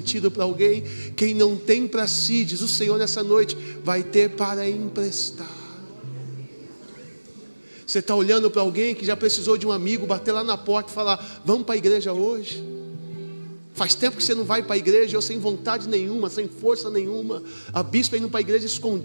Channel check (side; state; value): both; inverted; correlation -1.00